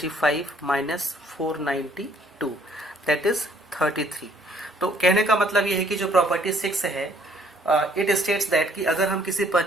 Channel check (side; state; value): both; normal; correlation 0.62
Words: minus 492 that is 33। तो कहने का मतलब ये है कि जो प्रॉपर्टी 6 है इट स्टेट्स दैट कि अगर हम किसी